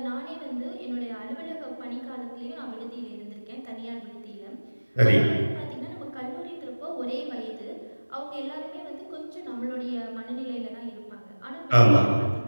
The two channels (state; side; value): inverted; both; correlation -1.00